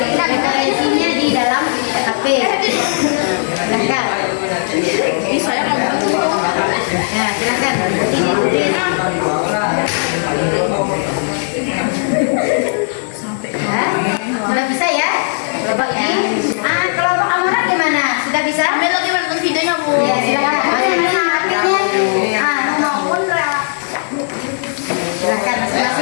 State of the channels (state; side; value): silent; right; digital silence